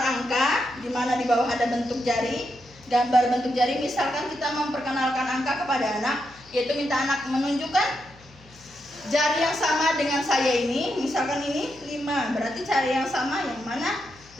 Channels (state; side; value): noise; left; hum, 25 dB below the sound